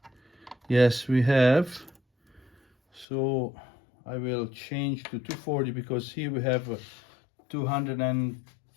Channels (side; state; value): right; drops out; at 3.1 s